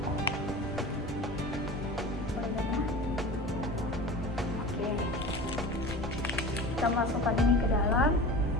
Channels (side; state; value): both; normal; correlation 0.34